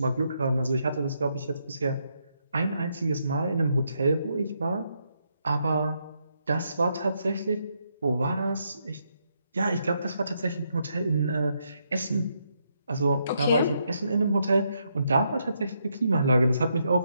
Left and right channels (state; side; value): inverted; both; correlation -0.78